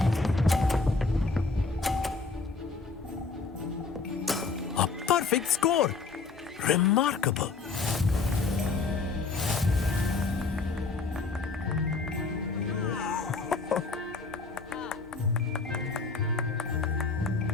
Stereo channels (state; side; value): quieter; right; 4.3 dB